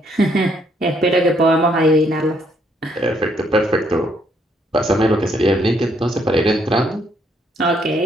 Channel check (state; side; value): normal; both; correlation 0.70